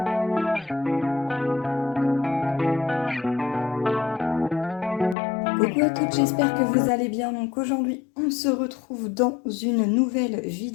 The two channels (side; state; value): right; drops out; at 5.2 s